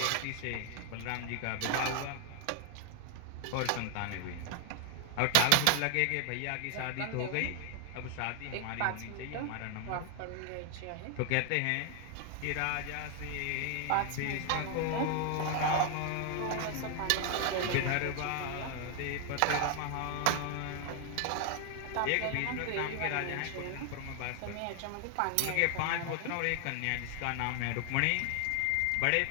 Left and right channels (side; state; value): both; different; correlation 0.00